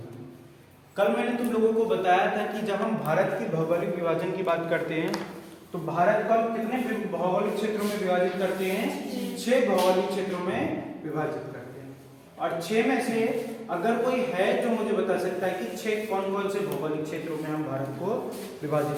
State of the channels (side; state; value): both; identical; correlation 1.00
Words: कल मैंने तुम लोगों को बताया था कि जब हम भारत के भौगोलिक विभाजन की बात करते हैं तो भारत को कितने भौगोलिक क्षेत्रों में विभाजित करते हैं? 6 भौगोलिक क्षेत्रों में विभाजित करते हैं। और 6 में से अगर कोई है जो मुझे बता सकता है कि 6 कौन कौन से भौगोलिक क्षेत्रों में हम भारत को विभाजित